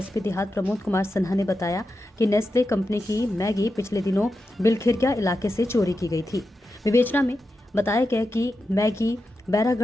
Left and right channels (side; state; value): both; normal; correlation 0.89